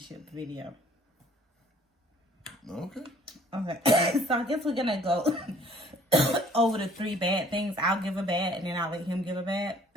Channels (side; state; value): both; normal; correlation 0.56